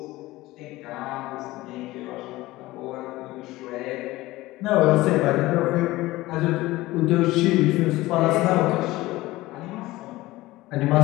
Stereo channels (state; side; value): quieter; right; 18.5 dB